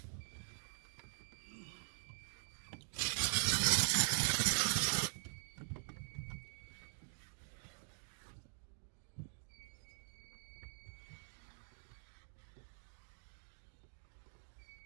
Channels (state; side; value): silent; left; digital silence